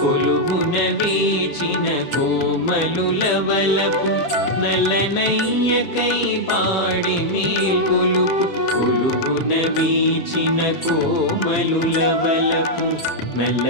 వేచిన కోమలుల వలపు నలనయ్యకై పాడి మేల్కొలుపు కొలువున వీచిన కోమలుల వలపు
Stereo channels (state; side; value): late; right; 7.4 ms